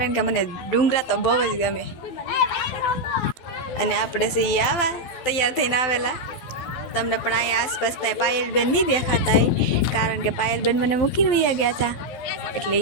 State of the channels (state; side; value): late; right; 12 ms